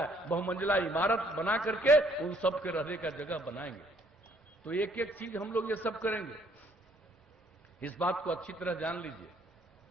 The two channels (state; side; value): normal; both; correlation 0.64